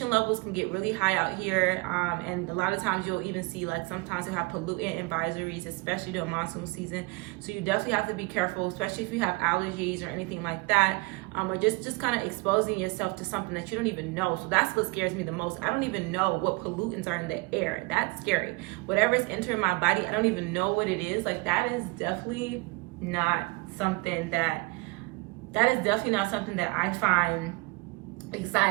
levels can get really high out here, and a lot of times you'll even see, like, sometimes you have pollutant advisories, especially during monsoon season. So you definitely have to be careful, especially if you have allergies or anything like that, or just kind of exposing yourself to something that you don't even know. So that's what scares me the most. I don't even know what pollutants are in the air. That's scary. Whatever is entering my body, I don't even know what it is. Like, that is definitely not something that I find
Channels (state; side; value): quieter; left; 25.9 dB